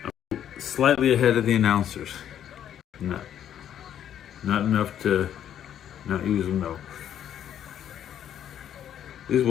Slightly ahead of the announcers. Not enough to not use them though. This is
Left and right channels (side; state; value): right; quieter; 10.1 dB